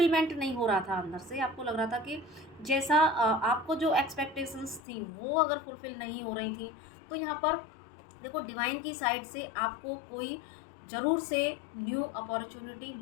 नहीं हो रहा था, अंदर से आपको लग रहा था कि जैसा आपको जो एक्सपेक्टेशंस थी वो अगर फुलफिल नहीं हो रही थी, तो यहाँ पर देखो डिवाइन की साइड से आपको कोई ज़रूर से न्यू अपॉर्चुनिटी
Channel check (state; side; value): drops out; right; at 4.8 s